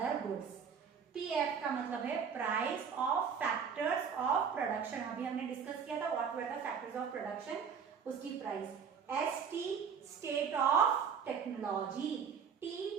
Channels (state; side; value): quieter; left; 6.7 dB